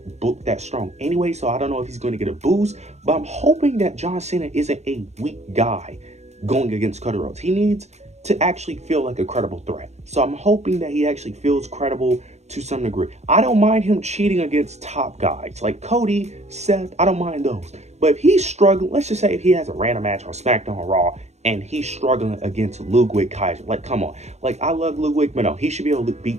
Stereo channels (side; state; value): left; late; 0.32 ms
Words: strong anyway. So I don't know if he's going to get a boost, but I'm hoping that John Cena isn't a weak guy going against Cody Rhodes. He needs to actually feel like a credible threat. So I'm hoping that he actually feels credible to some degree. I don't mind him cheating against top guys like Cody, Seth. I don't mind those. But if he's struggling, let's just say if he has a random match on SmackDown or Raw and he's struggling against Ludwig Kaiser, like come on, like I love Ludwig, but no, he should be able to